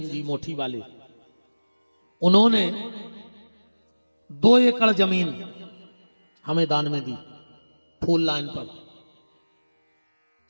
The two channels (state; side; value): inverted; both; correlation -1.00